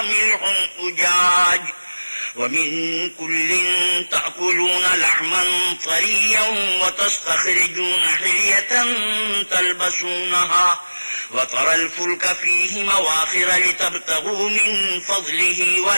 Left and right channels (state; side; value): inverted; both; correlation -1.00